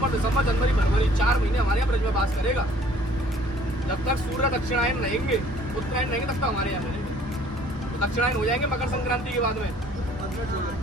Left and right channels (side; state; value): both; normal; correlation 0.56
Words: दिसंबर, जनवरी, फरवरी 4 महीने हमारे यहाँ ब्रज में बास करेगा। जब तक सूर्य दक्षिणायन रहेंगे, उत्तरायण रहेंगे, तब तक हमारे यहाँ रहेंगे। तो दक्षिणायन हो जाएंगे मकर संक्रांति के बाद में,